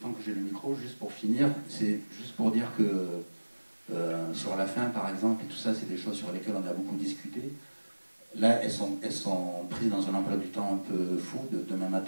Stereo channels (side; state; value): both; inverted; correlation -1.00